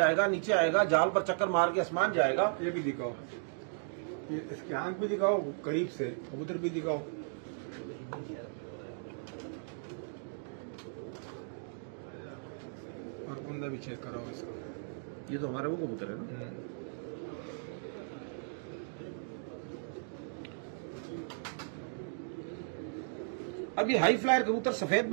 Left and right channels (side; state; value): left; silent; digital silence